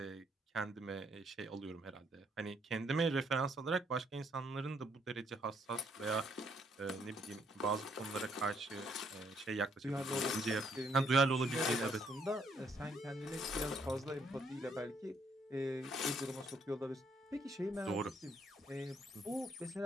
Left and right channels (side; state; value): both; normal; correlation 0.70